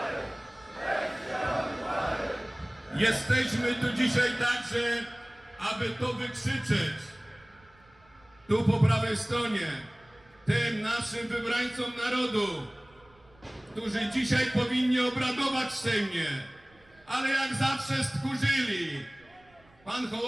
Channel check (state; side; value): noise; right; rumble, 30 dB below the sound